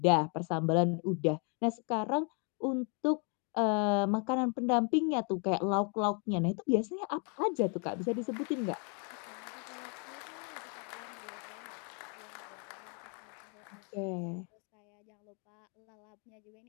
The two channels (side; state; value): right; quieter; 37.1 dB